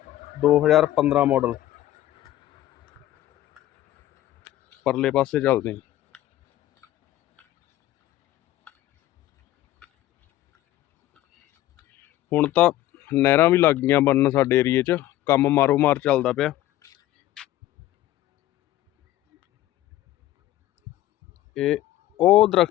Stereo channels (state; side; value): quieter; right; 14.5 dB